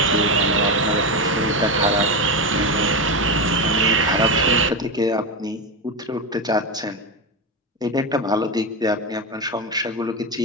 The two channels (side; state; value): both; normal; correlation 0.15